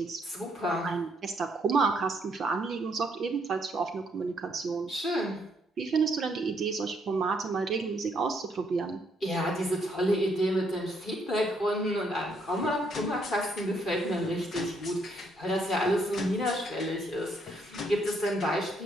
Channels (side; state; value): both; normal; correlation 0.72